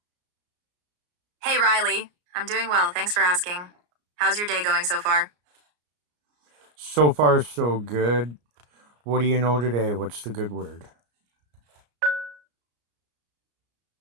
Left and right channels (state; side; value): late; left; 34 ms